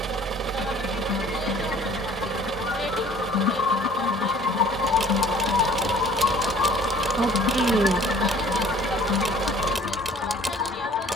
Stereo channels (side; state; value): both; normal; correlation 0.52